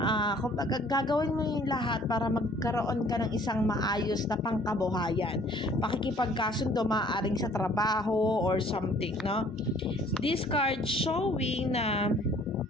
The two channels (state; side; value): normal; both; correlation 0.56